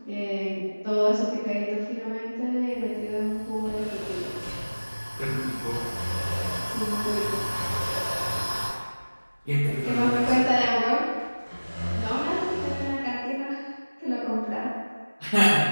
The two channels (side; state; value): both; inverted; correlation -1.00